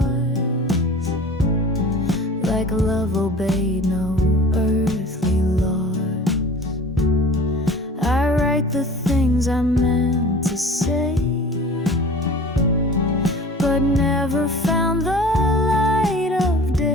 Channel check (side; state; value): both; normal; correlation 0.42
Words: like love obeyed no earthly laws. I write the things I meant to say, but never found the light of